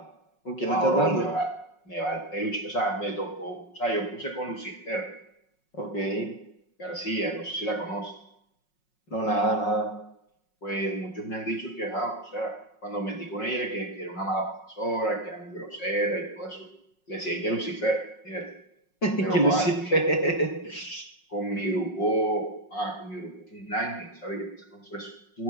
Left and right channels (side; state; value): right; late; 5.5 ms